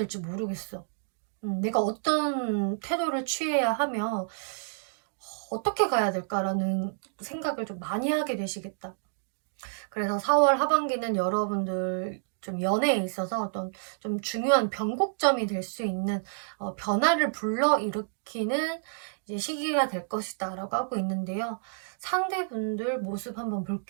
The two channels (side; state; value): left; silent; digital silence